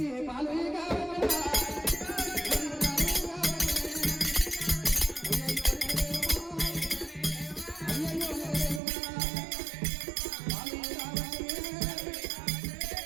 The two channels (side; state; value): left; drops out; at 8.8 s